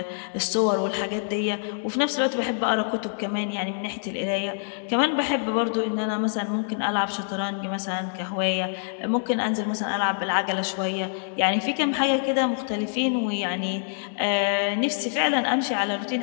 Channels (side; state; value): right; silent; 61 dB below the other